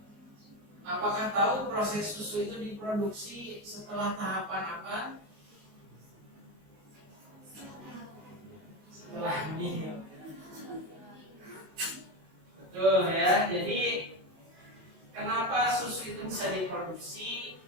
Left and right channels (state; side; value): late; left; 19 ms